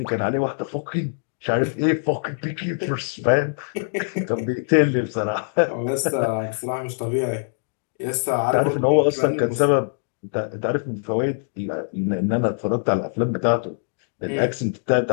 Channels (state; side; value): silent; right; digital silence